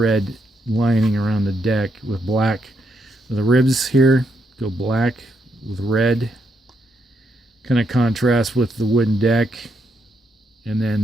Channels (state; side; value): normal; both; correlation 0.78